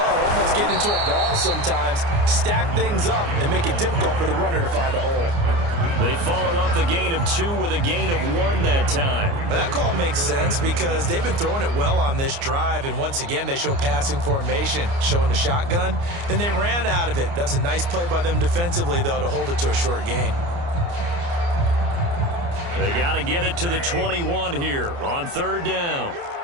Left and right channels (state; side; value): late; left; 29 ms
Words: almost get into a ball sometimes, stack things up, and make it difficult for the runner to find a hole. They follow up the gain of 2 with a gain of 1 that time. Well, that call makes sense because they've been throwing it well on this drive, and once again, they show passing formation, showing the shotgun. Then they ran out of it. That's a nice play by them defensively, though, to hold it to a short gain. They got to get it to the 21 here on third down.